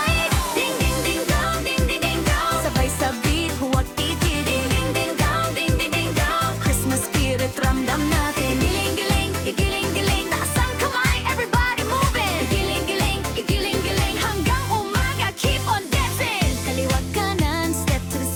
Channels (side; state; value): both; identical; correlation 1.00